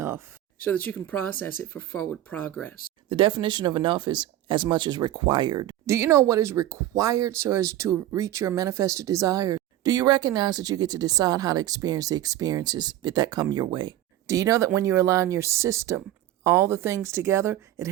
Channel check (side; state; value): left; quieter; 13.6 dB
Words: so that you can process it for forward progress. The definition of enough is as much as required. Do you know what is required so as to reach your manifested desires? Do you recognize that you get to decide how to experience the experiences that come your way? Do you know that when you align your system, all the things together, it